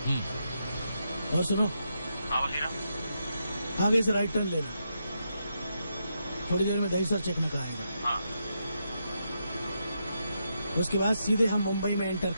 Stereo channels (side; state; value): both; inverted; correlation -0.83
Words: और सुनो। हाँ वसीला। आगे से राइट टर्न लेना, थोड़ी देर में दहीसर चेक निकल आएगा। हाँ। उसके बाद सीधे हम मुंबई में एंटर